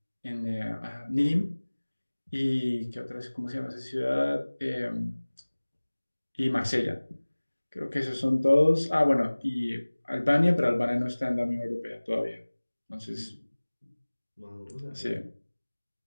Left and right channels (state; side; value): inverted; both; correlation -1.00